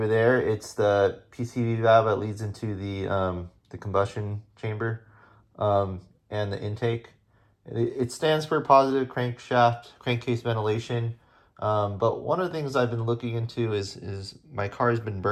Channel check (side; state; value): both; identical; correlation 1.00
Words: there, it's the PCV valve that leads into the combustion chamber and the intake. It stands for positive crankshaft crankcase ventilation. But one of the things I've been looking into is my car has been